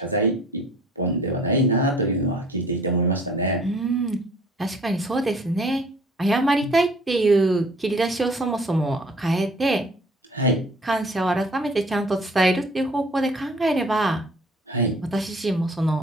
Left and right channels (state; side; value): normal; both; correlation 0.53